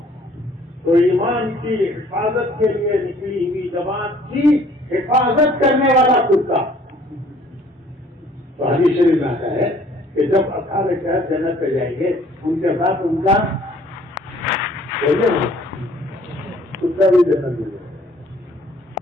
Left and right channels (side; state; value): both; normal; correlation 0.57